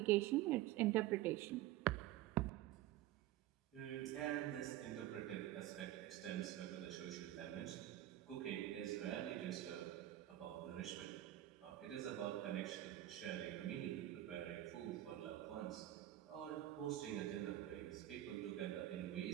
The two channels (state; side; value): quieter; left; 14.2 dB